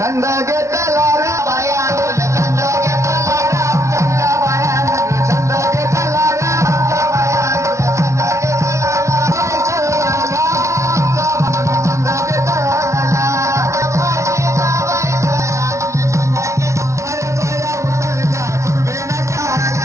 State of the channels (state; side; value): late; left; 0.14 ms